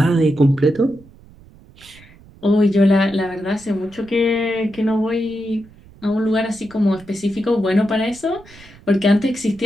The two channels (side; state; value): right; noise; rumble, 24 dB below the sound